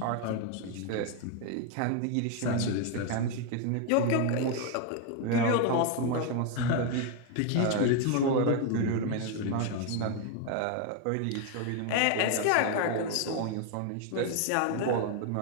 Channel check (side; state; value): both; different; correlation 0.01